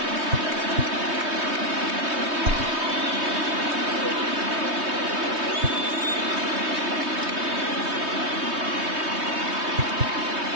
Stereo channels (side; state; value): left; late; 3.2 ms